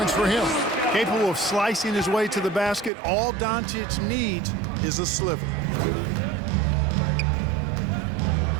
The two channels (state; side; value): drops out; left; at 2.9 s